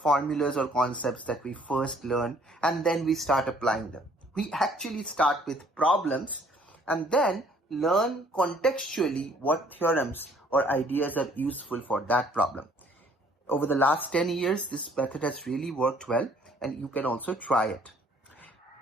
formulas or concepts that we first learn and then we start applying them. We actually start with problems and then learn contextually what theorems or ideas are useful for that problem. Over the last 10 years, this method has really worked well, and you can also try it.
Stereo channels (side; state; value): both; normal; correlation 0.60